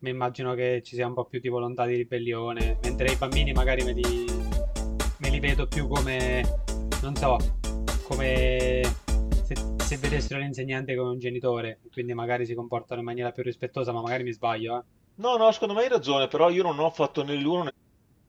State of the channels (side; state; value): both; identical; correlation 1.00